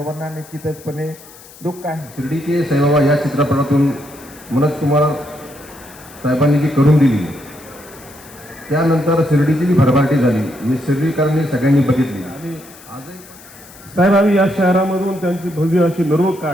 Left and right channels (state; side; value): noise; left; hiss, 21 dB below the sound